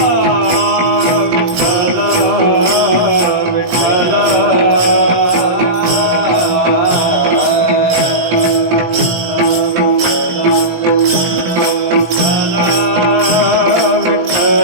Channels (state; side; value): late; left; 17 ms